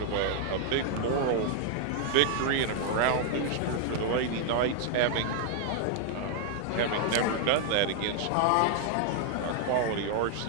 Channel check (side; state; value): both; different; correlation 0.00